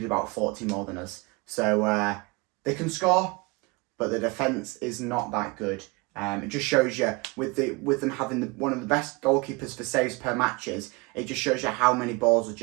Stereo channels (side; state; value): left; quieter; 27.2 dB